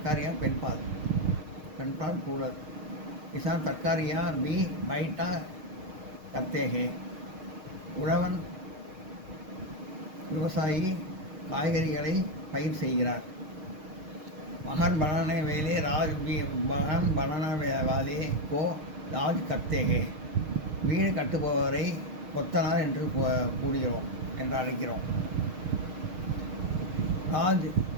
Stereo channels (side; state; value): left; late; 6.5 ms